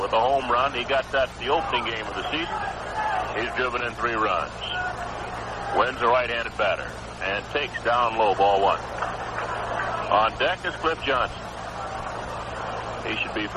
with a home run. He got that the opening game of the season. He's driven in 3 runs. Wynn's a right-handed batter and takes down low, ball 1. On deck is Cliff Johnson. He should be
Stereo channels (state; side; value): identical; both; correlation 1.00